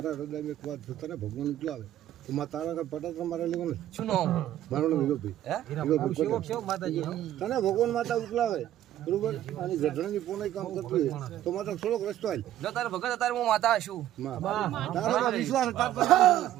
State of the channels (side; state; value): left; quieter; 12.7 dB